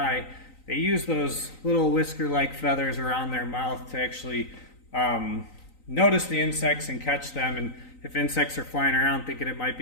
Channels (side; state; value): right; late; 3.9 ms